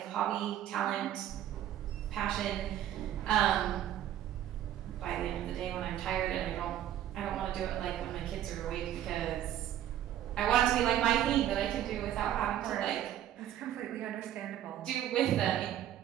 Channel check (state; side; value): quieter; left; 11.6 dB